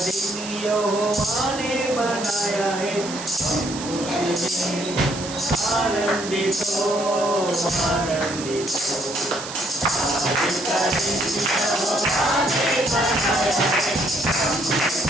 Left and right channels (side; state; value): right; noise; hiss, 10 dB below the sound